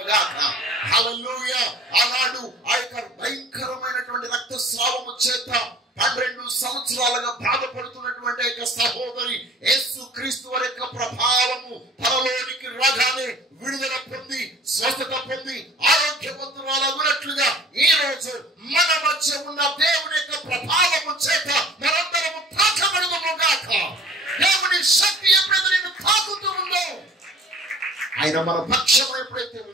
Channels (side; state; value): both; normal; correlation 0.48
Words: గాక. హల్లెలూయా. ఆనాడు ఆ యొక్క భయంకరమైనటువంటి రక్తస్రావము చేత 12 సంవత్సరాలుగా బాధపడుతున్నటువంటి యొక్క సహోదరి యేసు క్రీస్తు వారి యొక్క ప్రభావము తనలోనికి రాగానే విడుదల పొంది, స్వస్థత పొంది, ఆరోగ్యవంతురాలగునట్లుగా ఈ రోజు మన మధ్య ఉన్న దేవుని యొక్క ప్రభావము చేత మనందరము తాకబడదుము గాక. దేవుని శక్తి ఎప్పుడైతే నిన్ను తాకుతూ ఉందో, ఆయన మన పక్షం ఎప్పుడైతే